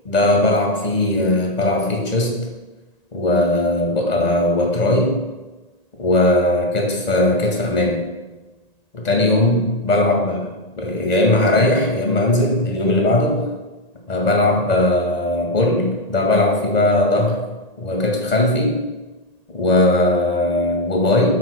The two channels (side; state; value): right; late; 1.9 ms